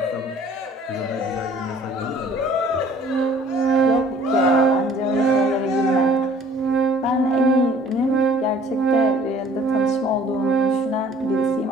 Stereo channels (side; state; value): both; normal; correlation 0.53